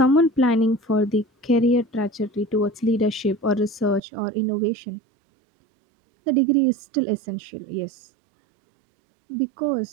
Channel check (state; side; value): drops out; left; at 4.0 s